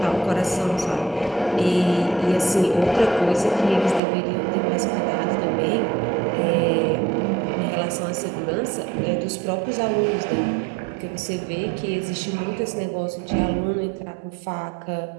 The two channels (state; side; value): drops out; left; at 4.0 s